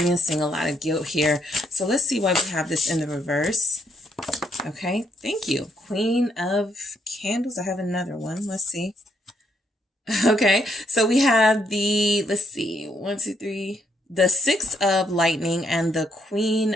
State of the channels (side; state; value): both; normal; correlation 0.74